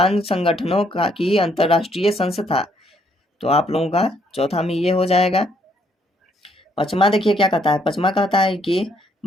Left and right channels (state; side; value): normal; both; correlation 0.69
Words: संगठनों का की अंतरराष्ट्रीय संस्था। तो आप लोगों का चौथा में ये हो जाएगा। पचमा देखिए क्या कहता है। पचमा कहता है कि